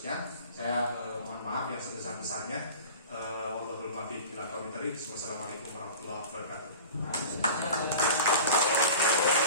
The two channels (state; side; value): inverted; both; correlation -0.38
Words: Saya mohon maaf yang sebesar-besarnya. Wallahul muwaffiq ila aqwamit thoriq. Wassalamualaikum warahmatullahi wabarakatuh.